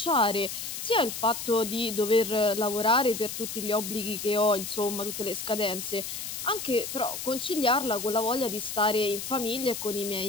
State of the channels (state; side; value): noise; left; hiss, 6 dB below the sound